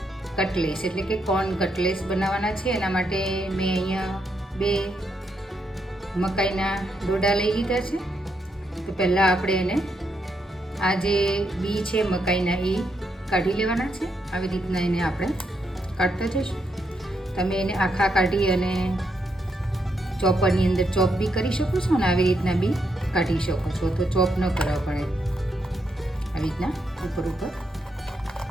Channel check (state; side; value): normal; both; correlation 0.79